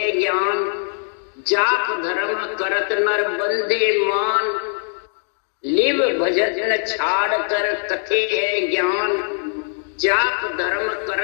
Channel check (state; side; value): silent; right; 65 dB below the other